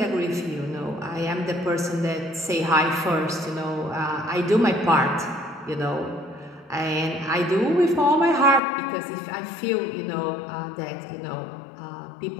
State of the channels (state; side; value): drops out; right; at 8.6 s